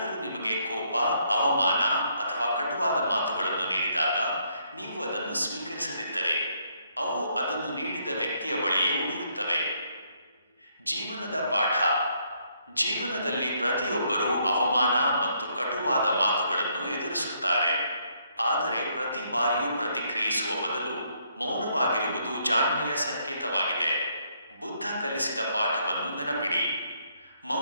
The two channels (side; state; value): both; inverted; correlation -0.71